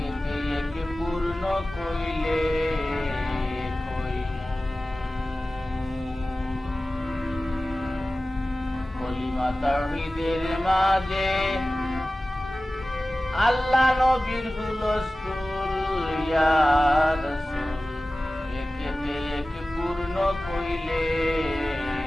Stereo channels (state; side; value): normal; both; correlation 0.96